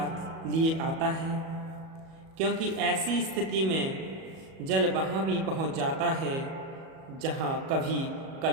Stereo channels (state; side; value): late; left; 37 ms